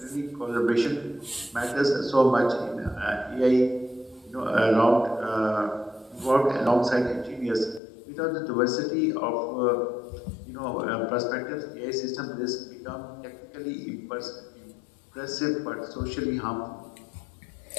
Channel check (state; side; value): drops out; right; at 7.8 s